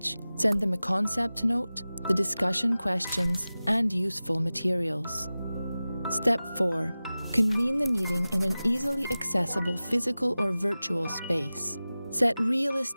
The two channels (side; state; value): both; inverted; correlation -0.96